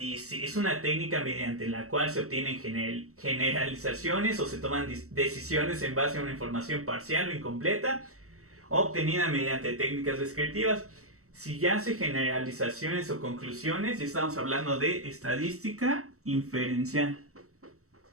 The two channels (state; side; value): late; left; 0.64 ms